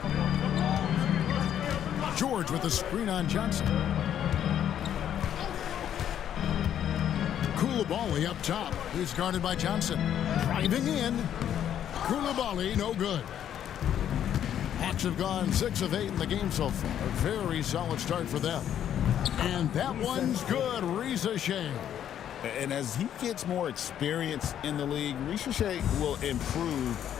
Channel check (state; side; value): quieter; right; 10.1 dB